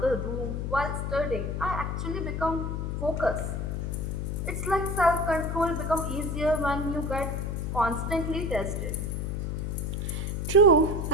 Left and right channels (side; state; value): left; noise; hum, 2 dB below the sound